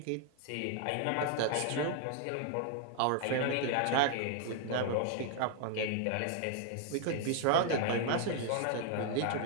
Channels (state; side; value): different; both; correlation 0.00